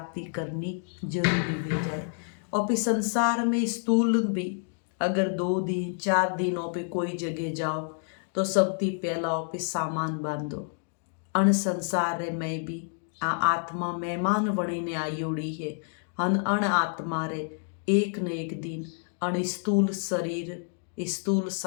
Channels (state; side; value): silent; right; 59 dB below the other